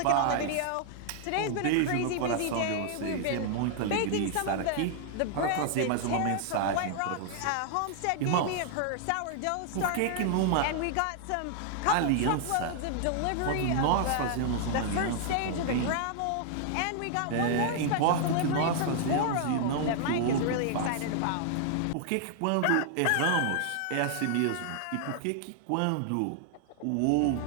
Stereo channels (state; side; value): different; both; correlation 0.00